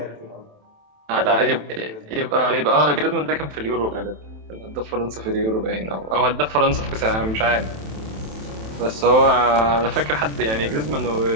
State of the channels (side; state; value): left; late; 27 ms